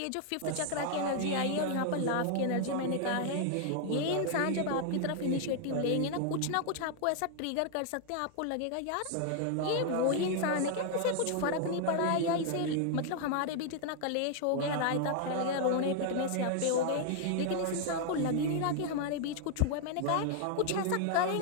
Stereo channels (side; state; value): both; different; correlation 0.00